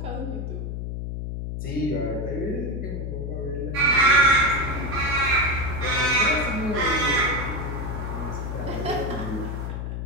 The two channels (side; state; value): left; noise; hum, 4 dB below the sound